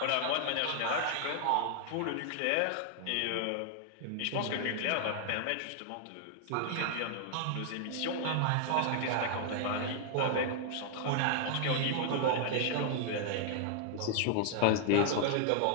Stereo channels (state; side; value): different; both; correlation 0.00